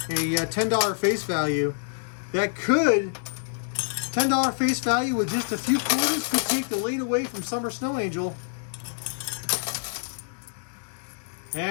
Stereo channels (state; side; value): silent; right; digital silence